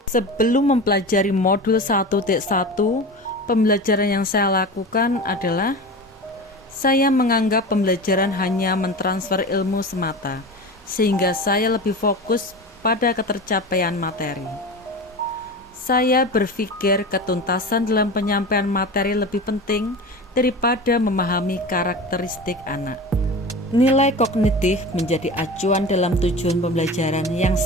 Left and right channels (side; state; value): both; normal; correlation 0.30